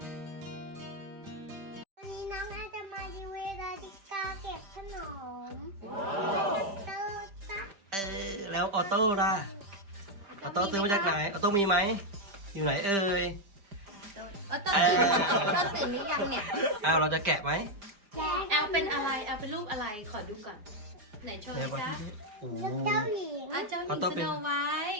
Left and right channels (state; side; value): late; left; 5.1 ms